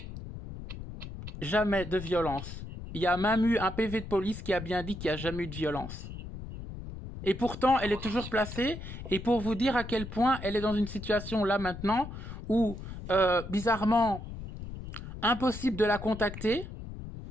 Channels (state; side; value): noise; left; rumble, 10 dB below the sound